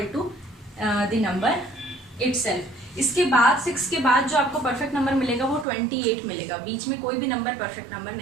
to the number itself. इसके बाद 6 के बाद जो आपको परफेक्ट नंबर मिलेगा वो 28 मिलेगा, बीच में कोई भी नंबर परफेक्ट नंबर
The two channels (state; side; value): drops out; left; at 5.7 s